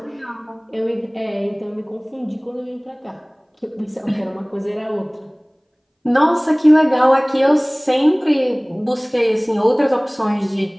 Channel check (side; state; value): both; identical; correlation 1.00